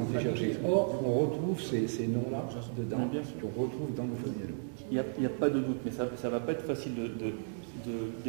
été cherchés. Or, on retrouve ces noms-là dedans, qu'on retrouve dans nos familles. Il n'y a pas de doute, mais ça ne va pas être facile de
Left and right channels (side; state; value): left; silent; digital silence